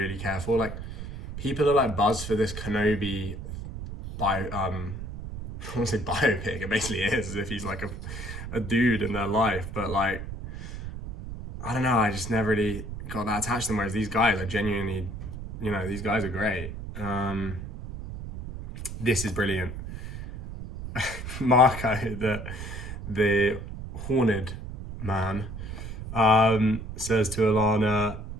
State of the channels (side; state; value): right; noise; rumble, 9 dB below the sound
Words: care for. Like, people are like buzzed for this Kenobi I won't say biopic. It basically is, as if he's like a dude in their life. But like, I don't know, I just never really got that attached to them. Whereas these guys, I genuinely, these guys are great. This is brilliant. Marko, the horned man, says to Alana